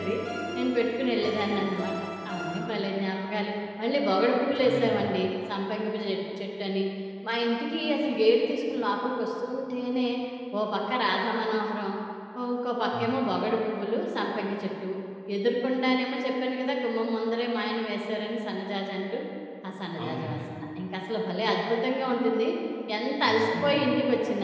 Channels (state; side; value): identical; both; correlation 1.00